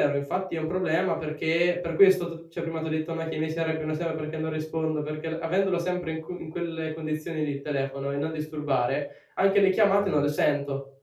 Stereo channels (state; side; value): identical; both; correlation 1.00